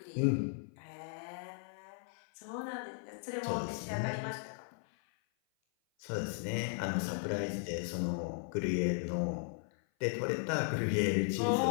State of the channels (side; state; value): right; silent; 53 dB below the other